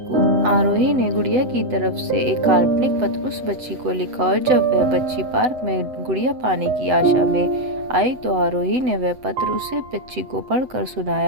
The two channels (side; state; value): left; late; 7.9 ms